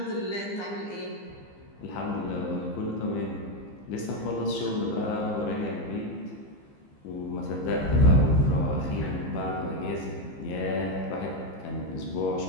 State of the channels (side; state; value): right; late; 15 ms